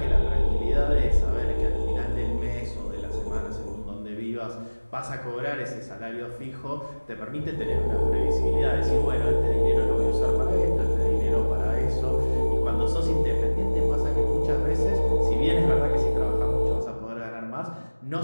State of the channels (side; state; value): both; inverted; correlation -1.00